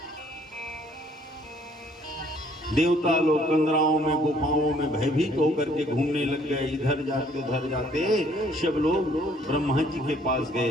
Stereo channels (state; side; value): normal; both; correlation 0.62